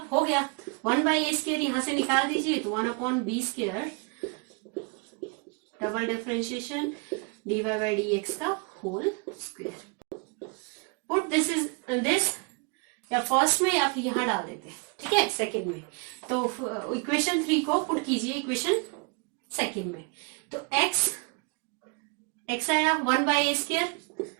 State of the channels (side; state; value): left; quieter; 32.5 dB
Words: हो गया, 1 बाई ए स्क्वायर यहां से निकाल दीजिए, तो 1 upon b square double differentiation d y by d x का whole square. Put this is this, या फर्स्ट में या फिर यहां डाल देते हैं, ठीक है, सेकेंड में, तो इक्वेशन 3 को पुट कीजिए इक्वेशन सेकेंड में, तो x आया 1 by a square